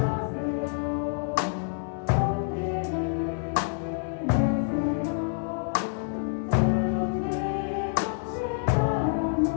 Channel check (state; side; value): silent; right; 60 dB below the other